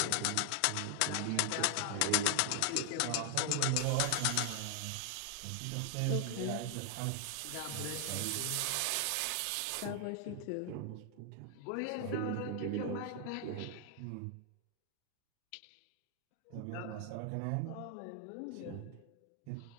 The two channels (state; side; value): different; both; correlation 0.00